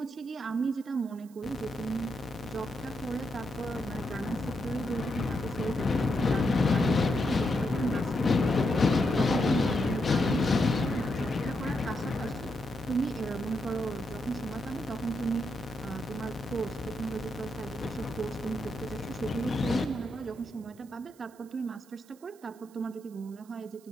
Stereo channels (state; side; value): noise; right; hiss, 27 dB below the sound